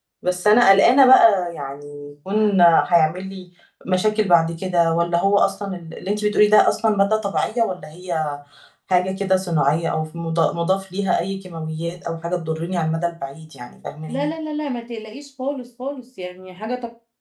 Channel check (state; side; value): identical; both; correlation 1.00